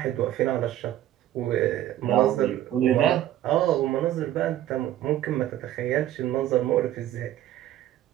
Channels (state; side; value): quieter; left; 12.8 dB